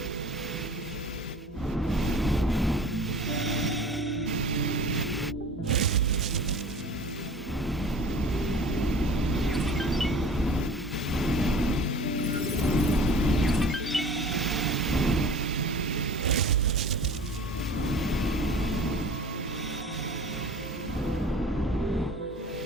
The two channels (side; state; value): both; normal; correlation 0.42